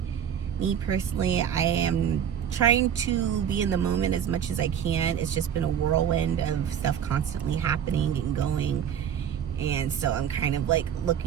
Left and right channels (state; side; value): quieter; left; 8.8 dB